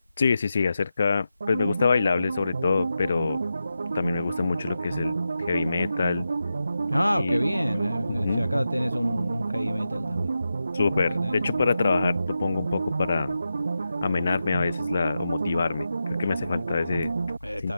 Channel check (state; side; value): inverted; both; correlation -0.90